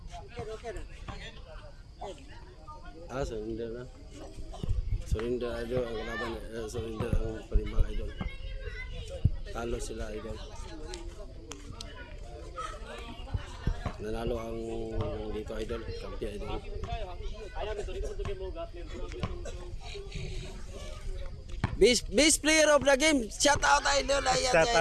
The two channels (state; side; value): identical; both; correlation 1.00